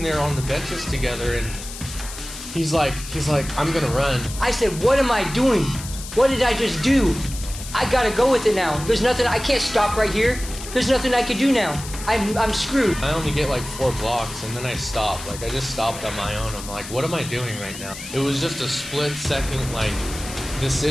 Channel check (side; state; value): left; noise; hiss, 12 dB below the sound